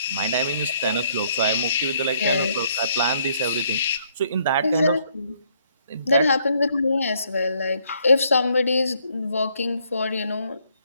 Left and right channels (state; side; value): inverted; both; correlation -0.68